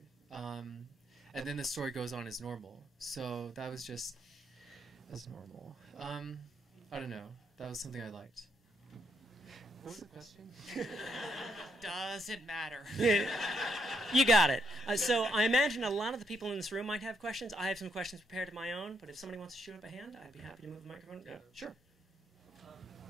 And then the story goes on as normal. So that was just as normal. I don't know. That was something I liked. What was the question? Doesn't matter. You got it. So I imagine a lot of the people in this room might have questions. I have some questions prepared of my own, but if somebody wants to shoot up a hand, I'd be happy to move the microphone. Yeah, sure.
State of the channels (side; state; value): both; normal; correlation 0.76